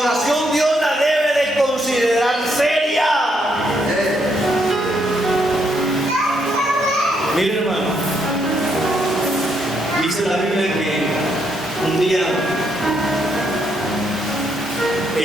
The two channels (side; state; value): both; normal; correlation 0.75